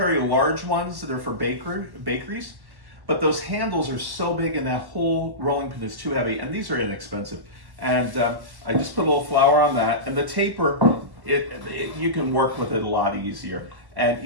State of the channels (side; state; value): left; late; 1.1 ms